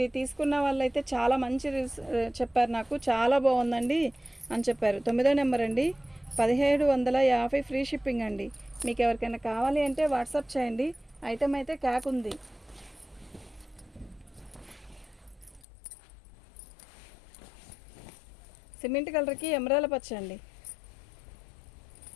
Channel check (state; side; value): drops out; right; at 15.7 s